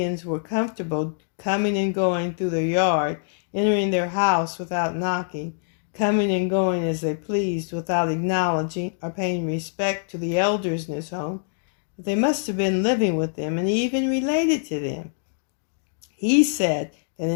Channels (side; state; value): right; silent; digital silence